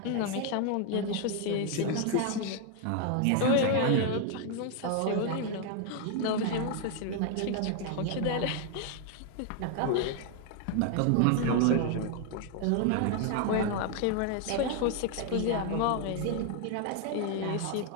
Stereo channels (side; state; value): both; different; correlation 0.00